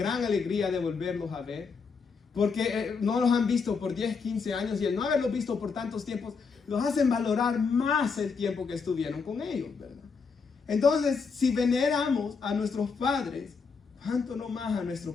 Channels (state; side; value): quieter; right; 5.2 dB